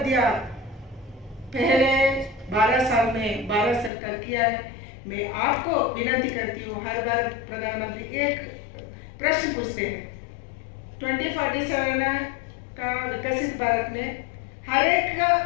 पहले 12 साल में 12 सरकार किया है। मैं आपको विनती करती हूँ, हर बार प्रधानमंत्री एक प्रश्न पूछते हैं, 2047 का विकसित भारत में हर एक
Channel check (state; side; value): drops out; right; at 3.9 s